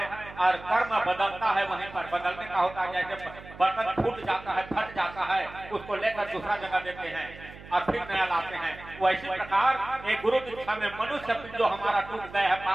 और कर्म बदलता है। वहीं पर बदलने का होता है, जैसे बर्तन फूट जाता है, फट जाता है, उसको लेकर दूसरा जगह देते हैं और फिर नया लाते हैं। वैसी प्रकार एक गुरु दीक्षा में मनुष्य जो हमारा टूट गए है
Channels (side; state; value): right; noise; hum, 17 dB below the sound